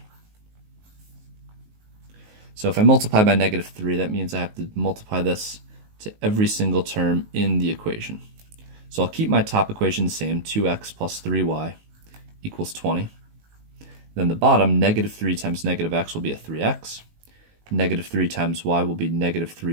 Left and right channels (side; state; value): left; late; 19 ms